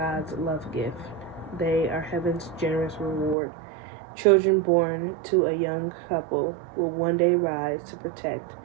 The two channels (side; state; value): left; drops out; at 3.4 s